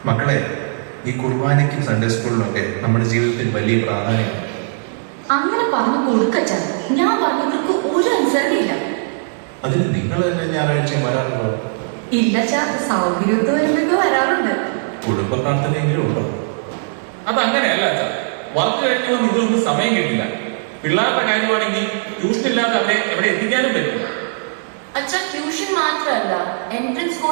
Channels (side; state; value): left; silent; digital silence